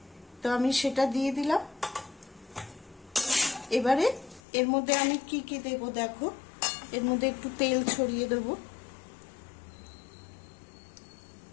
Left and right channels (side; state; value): right; drops out; at 4.4 s